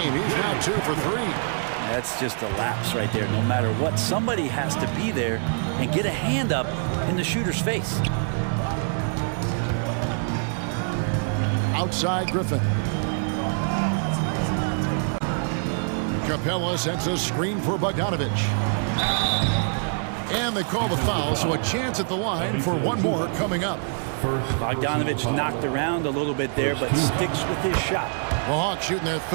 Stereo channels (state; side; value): silent; left; 62 dB below the other